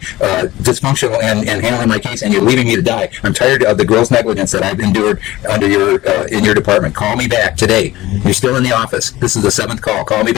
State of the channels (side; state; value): right; quieter; 17.2 dB